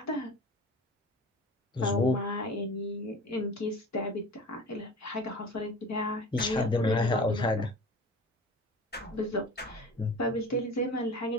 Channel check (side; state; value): both; normal; correlation 0.38